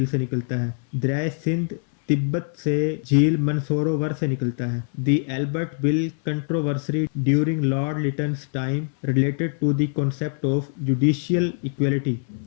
से निकलता है। दरियाए सिंध तिब्बत से झील मनसरोवर से निकलता है। The Ilbert bill controversy during lord Lytton's time related to the concept of judicial equality.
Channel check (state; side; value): silent; right; 63 dB below the other